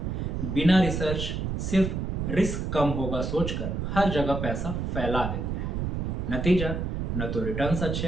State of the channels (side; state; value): right; noise; rumble, 2 dB below the sound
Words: बिना रिसर्च, सिर्फ रिस्क कम होगा सोचकर हर जगह पैसा फैला देते हैं। नतीजा, न तो रिटर्न्स